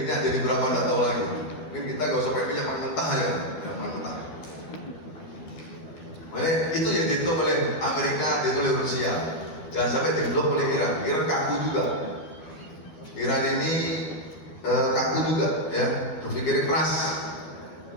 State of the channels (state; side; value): late; right; 12 ms